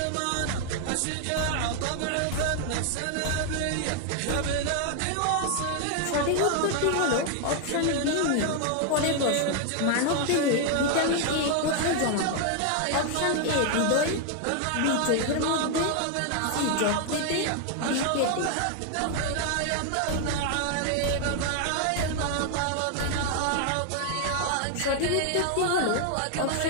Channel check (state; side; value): different; both; correlation 0.00